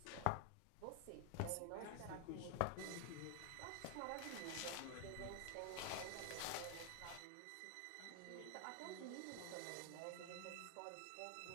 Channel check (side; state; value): both; different; correlation 0.00